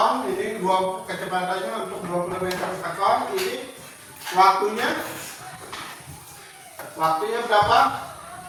Ini kecepatannya untuk 20 meter per sekon. Ini waktunya berapa?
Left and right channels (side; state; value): both; identical; correlation 1.00